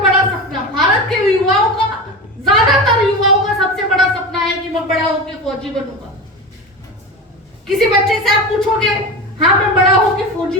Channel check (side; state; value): both; normal; correlation 0.25